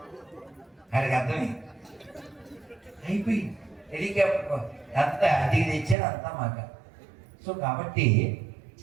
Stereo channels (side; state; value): left; drops out; at 6.0 s